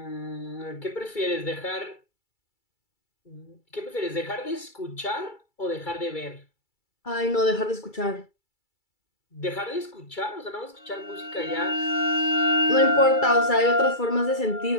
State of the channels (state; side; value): late; right; 2.3 ms